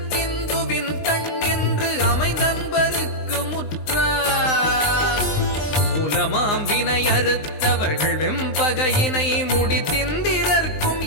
கண் என்று அமைந்தன்பருக்கு முற்ற மூலமாம் வினை அறுத்தவர்கள் வெம்பகையினை முடித்திந்திரர்க்கும்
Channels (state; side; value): late; right; 19 ms